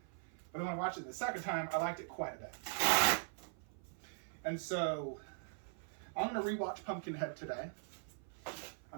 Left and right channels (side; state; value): left; silent; 50 dB below the other